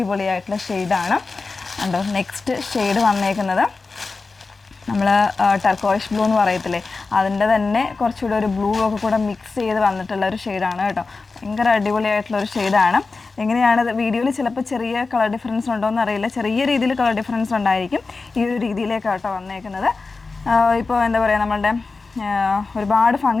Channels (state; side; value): quieter; right; 4.0 dB